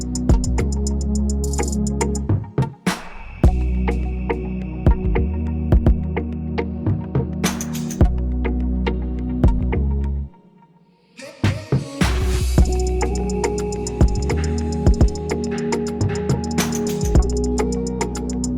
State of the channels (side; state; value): both; identical; correlation 1.00